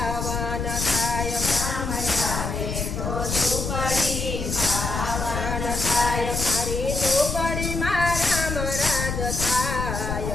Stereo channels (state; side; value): noise; left; rumble, 3 dB below the sound